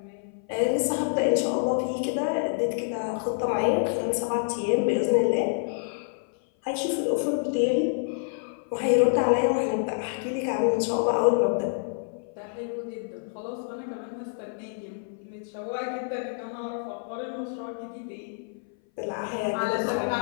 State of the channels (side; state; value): right; silent; 58 dB below the other